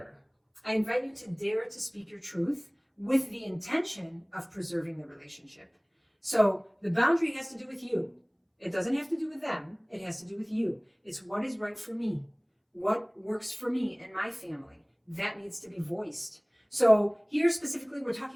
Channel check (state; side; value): identical; both; correlation 1.00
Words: I invite you to dare to speak your truth with the intention of preserving the relationship. So the boundary has to do with you. It doesn't have to do with them. It has to do with you. It's what is right for me. What works for me and my family. That needs to be voiced. So here specifically, we're